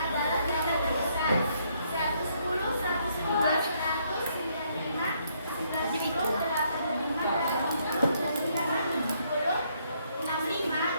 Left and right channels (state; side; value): inverted; both; correlation -0.71